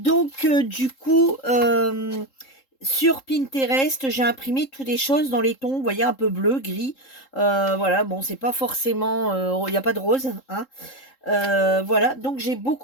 du coup, sur Pinterest, j'ai imprimé toutes les choses dans les tons, vous voyez, un peu bleu, gris. Voilà, bon, c'est pas forcément... Il n'y a pas de rose, hein. Voilà, donc j'ai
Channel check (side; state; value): right; late; 3.7 ms